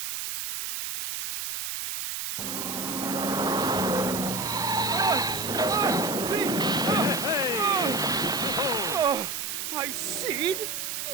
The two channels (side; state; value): right; noise; hiss, 4 dB below the sound